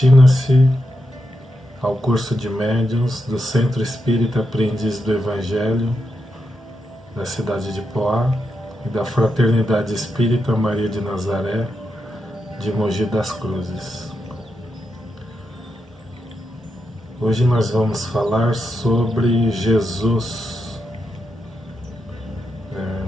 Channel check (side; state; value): both; normal; correlation 0.85